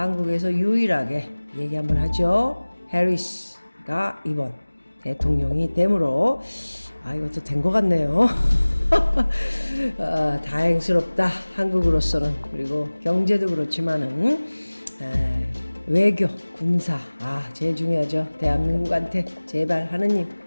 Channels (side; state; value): both; inverted; correlation -1.00